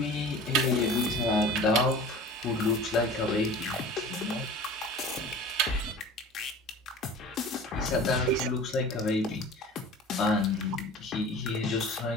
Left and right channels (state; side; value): normal; both; correlation 0.40